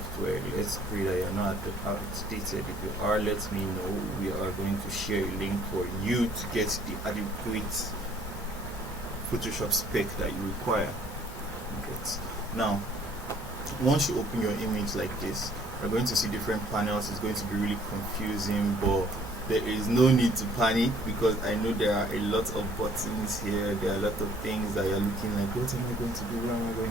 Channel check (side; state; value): both; normal; correlation 0.59